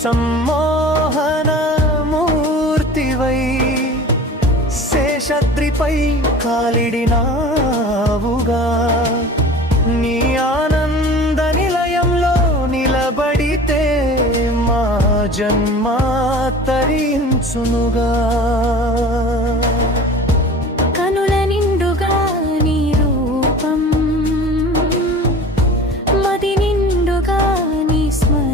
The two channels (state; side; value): normal; both; correlation 0.40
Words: సమ్మోహన మూర్తివై శేషద్రిపై కాలిడినావుగా నీ ఆనంద నిలయంలో నిలబడితే మా జన్మ తరించునుగా కనుల నిండుగా నీ రూపం మది నిండుగా నీ